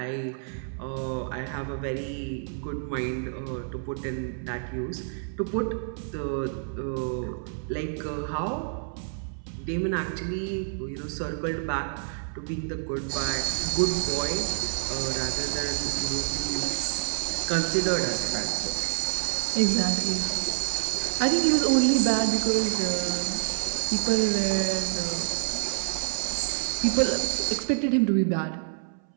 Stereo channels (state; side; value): silent; left; 59 dB below the other